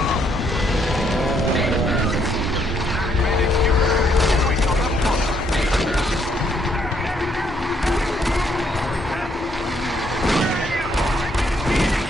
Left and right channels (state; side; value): normal; both; correlation 0.72